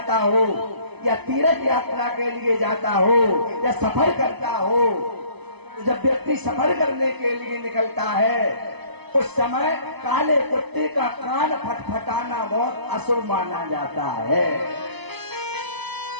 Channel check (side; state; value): left; late; 0.99 ms